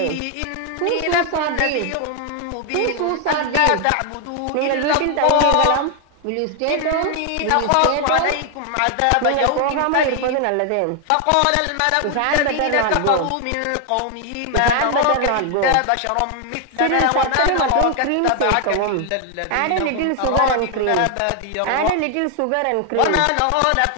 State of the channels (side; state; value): both; different; correlation 0.00